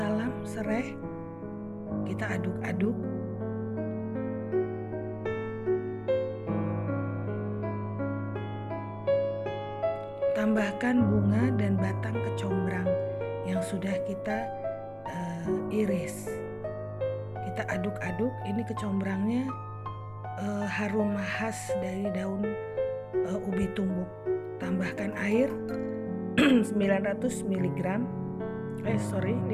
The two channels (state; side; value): identical; both; correlation 1.00